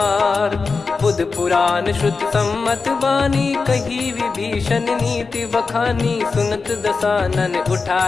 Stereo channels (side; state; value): right; quieter; 4.5 dB